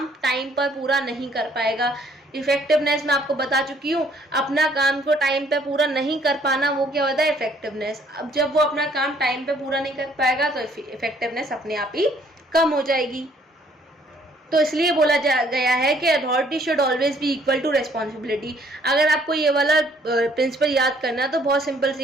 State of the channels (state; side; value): normal; both; correlation 0.63